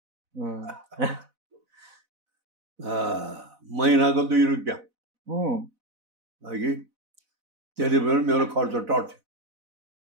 महिनाको 2 रुपियाँ कि त्यति बेला मेरो खर्च टर्थ्यो।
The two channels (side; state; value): left; late; 4.0 ms